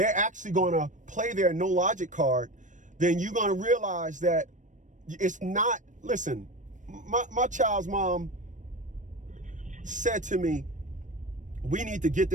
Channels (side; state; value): left; late; 0.37 ms